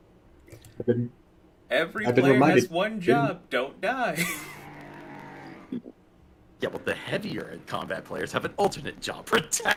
I've been- Every I've been player reminded- has one job. Don't die. Yeah, well, the heavier in combat players have an alternate job.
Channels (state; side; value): identical; both; correlation 1.00